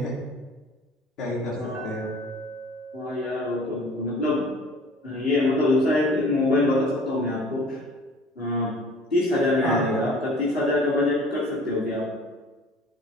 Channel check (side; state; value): both; normal; correlation 0.48